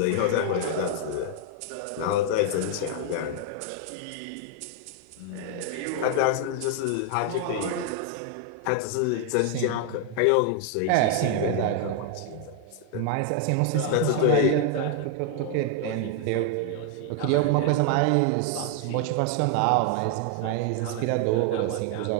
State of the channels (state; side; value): different; both; correlation 0.00